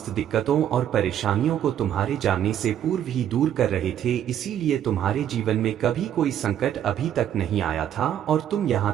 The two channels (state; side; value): quieter; left; 10.4 dB